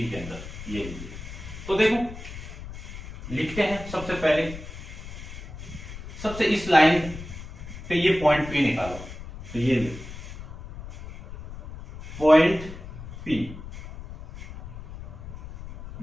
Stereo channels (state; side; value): noise; left; rumble, 12 dB below the sound